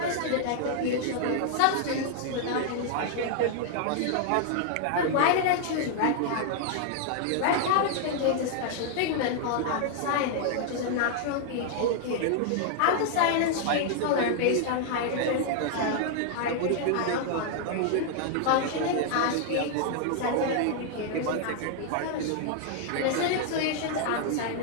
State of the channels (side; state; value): both; different; correlation -0.01